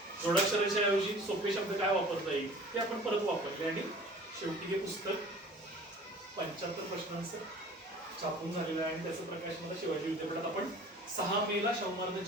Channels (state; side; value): normal; both; correlation 0.45